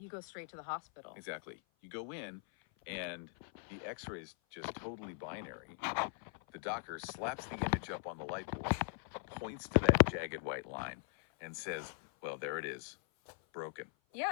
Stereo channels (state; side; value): silent; right; 51 dB below the other